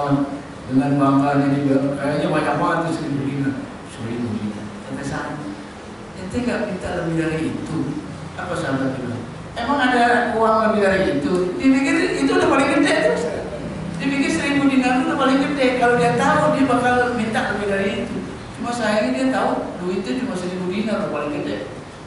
dengan bangganya dia, kayaknya banyak banget tuh 1000 dinar. 1000 dinar. Kata sahabat, ente nggak minta lebih dari itu? Apa sahabat bilang? Emang ada uang lebih dari itu? Dipikir itu udah paling gede tuh. Dipikir 1000 dinar itu udah paling gede. Kalau dia tahu dia bakal minta lebih dari itu. Cuma sayangnya dia tahu duitnya cuma 1000 dinar udah paling gede.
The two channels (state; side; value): identical; both; correlation 1.00